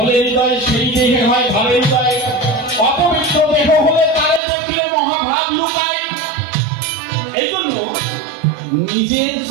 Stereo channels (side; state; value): left; drops out; at 4.4 s